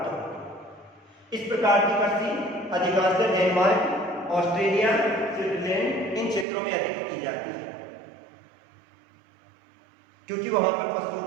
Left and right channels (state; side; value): drops out; left; at 6.5 s